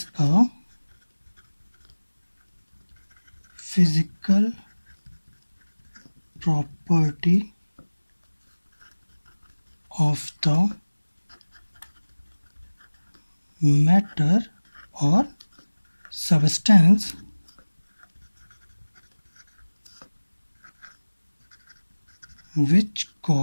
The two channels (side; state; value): both; inverted; correlation -1.00